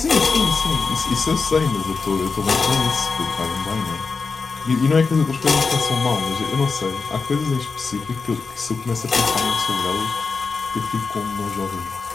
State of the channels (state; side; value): quieter; right; 4.6 dB